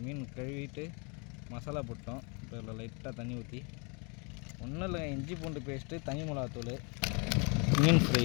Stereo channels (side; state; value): right; quieter; 33.3 dB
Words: மீன் கழுவிட்டு மசாலா போட்டோம். இப்போ இதில் லைட்டாக தண்ணி ஊற்றி, ஒன்றும் இல்லை, இஞ்சி பூண்டு பேஸ்ட்டு, தனி மிளகாத்தூள், மீன் ஃப்ரை